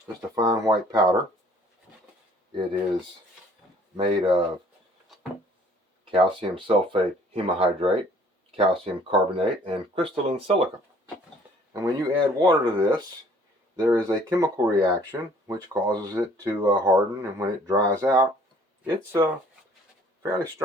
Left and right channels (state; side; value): normal; both; correlation 0.56